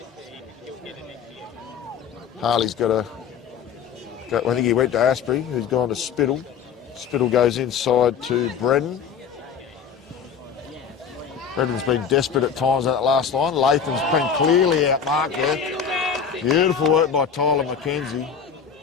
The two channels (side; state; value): right; quieter; 7.0 dB